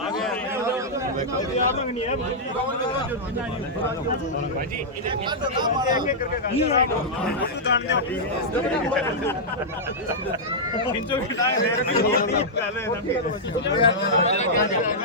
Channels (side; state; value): both; normal; correlation -0.09